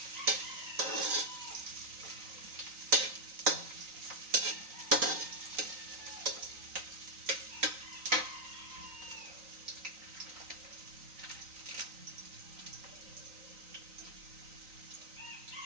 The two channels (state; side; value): late; left; 3.9 ms